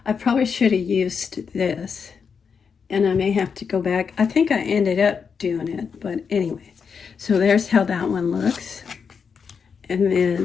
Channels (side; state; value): right; quieter; 6.1 dB